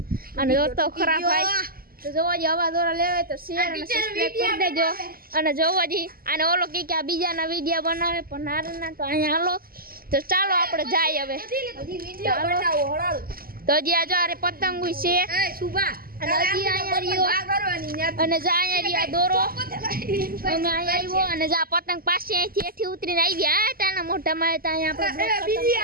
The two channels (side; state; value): left; late; 0.43 ms